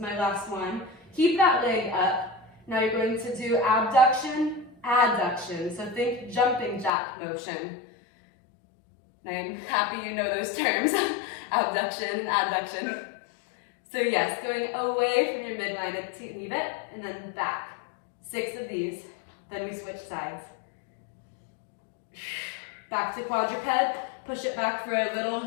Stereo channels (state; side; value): drops out; right; at 6.9 s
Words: last one. Keep that leg up. Now you're going to do abduction, adduction. So think jumping jack motion. And I'm happy you know those terms, abduction and adduction. So yes, going away from your midline to leave it, and then back. 6 of these, then we switch sides. Back to quadruped, push it back for a little